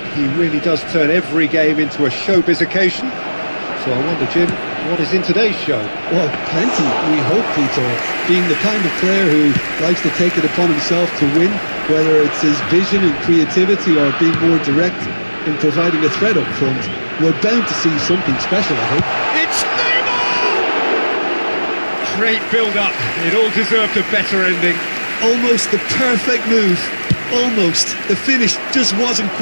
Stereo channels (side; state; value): both; inverted; correlation -1.00